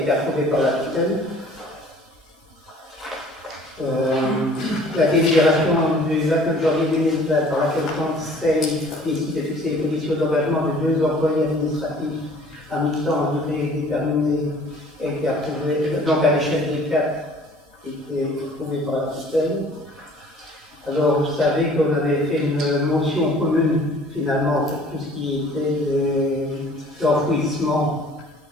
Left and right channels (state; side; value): normal; both; correlation 0.52